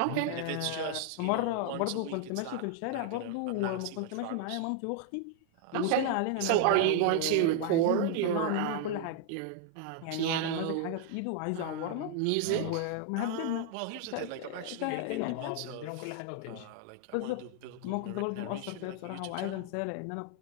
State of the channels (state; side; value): different; both; correlation 0.00